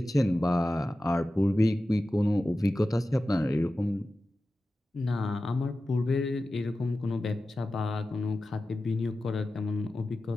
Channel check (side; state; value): both; normal; correlation 0.94